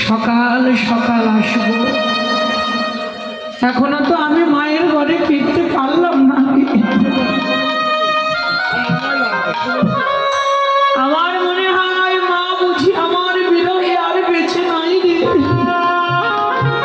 সকাল সকাল আসবো। এখনো তো আমি মায়ের ঘরে ফিরতে পারলাম না।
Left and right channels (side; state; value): both; identical; correlation 1.00